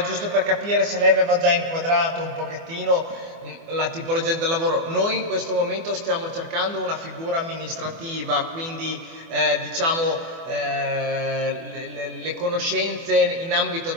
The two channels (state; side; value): late; left; 24 ms